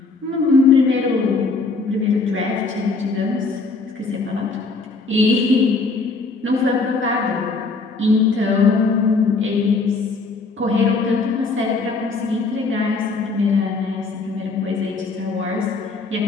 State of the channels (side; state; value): right; quieter; 4.0 dB